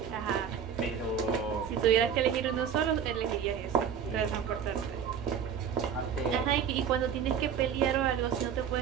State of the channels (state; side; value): quieter; left; 7.9 dB